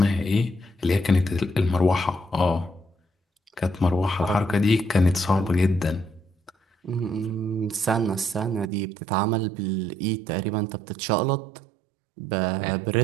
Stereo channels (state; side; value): drops out; left; at 8.7 s